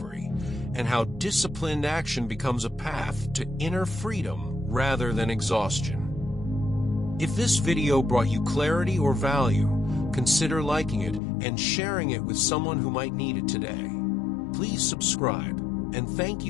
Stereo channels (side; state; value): right; drops out; at 11.2 s